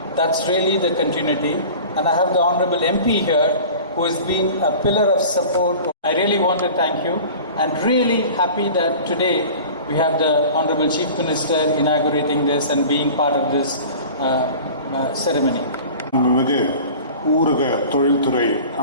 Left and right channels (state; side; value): inverted; both; correlation -0.40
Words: That's really the continuity. And I have the honorable MP here who has been a pillar of support. I really want to thank you and really happy that today we have the honorable chief minister inaugurating this and being part of this ceremony. ஊரக தொழில்துறை